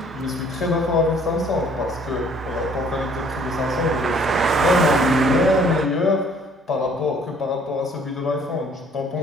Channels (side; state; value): both; normal; correlation 0.58